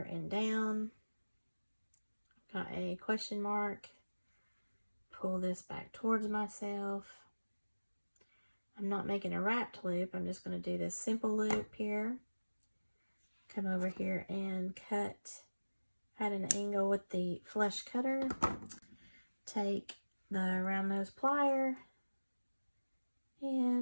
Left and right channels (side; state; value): both; inverted; correlation -1.00